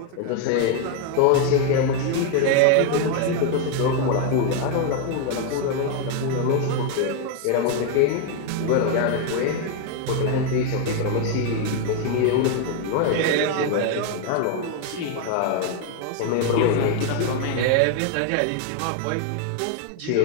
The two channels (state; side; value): different; both; correlation 0.01